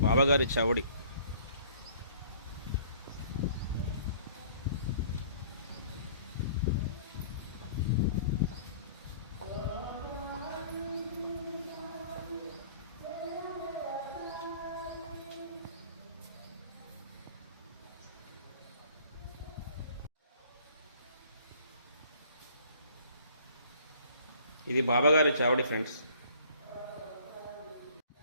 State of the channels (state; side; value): inverted; both; correlation -0.54